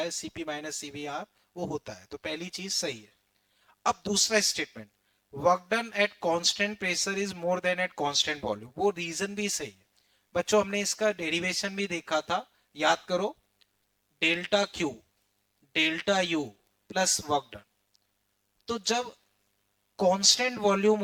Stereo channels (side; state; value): both; identical; correlation 1.00